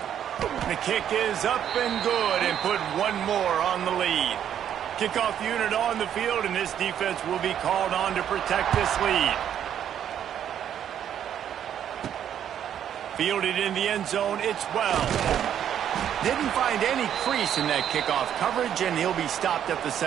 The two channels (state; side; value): quieter; left; 9.7 dB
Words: The kick is up and good, and put one more on the lead. Kickoff unit on the field, and this defense will be called on to protect this lead. Fielded in the end zone, it's Wells. Didn't find any crease in that kickoff coverage, and he'll be stopped at the